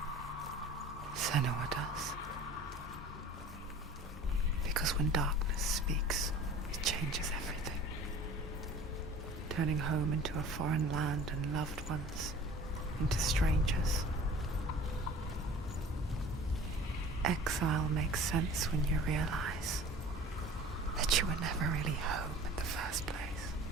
Senua does. Because when darkness speaks, it changes everything, turning home into a foreign land and loved ones into strangers. Exile makes sense when you realize that you were never really home in the first place.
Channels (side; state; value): both; normal; correlation 0.44